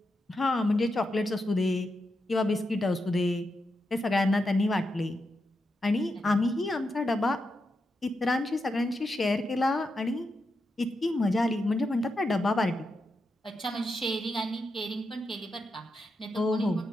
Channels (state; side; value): normal; both; correlation 0.86